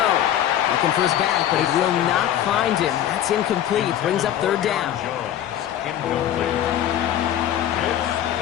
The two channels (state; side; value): quieter; right; 11.2 dB